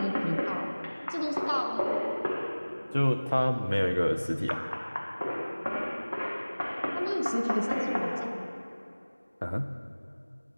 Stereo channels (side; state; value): both; inverted; correlation -1.00